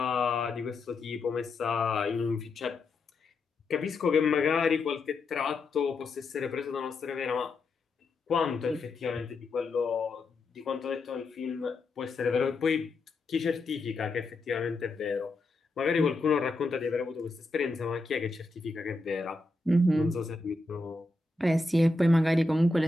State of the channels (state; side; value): quieter; right; 3.2 dB